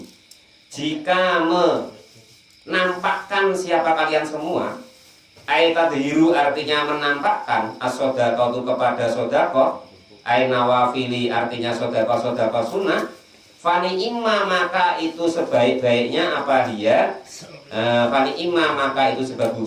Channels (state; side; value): identical; both; correlation 1.00